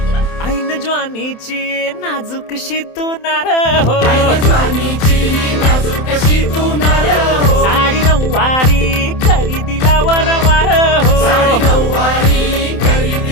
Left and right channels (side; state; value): right; late; 27 ms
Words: ऐन ज्वानीची नाजूकशी तू नार हो साडी नऊवारी करी दिला वरवार हो